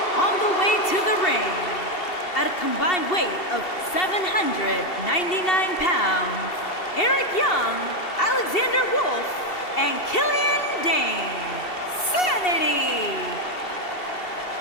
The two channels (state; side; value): late; right; 2.7 ms